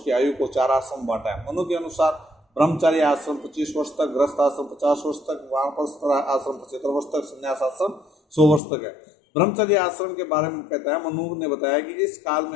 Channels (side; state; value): right; drops out; at 8.6 s